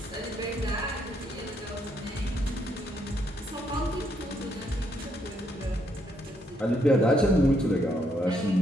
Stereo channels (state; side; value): normal; both; correlation 0.74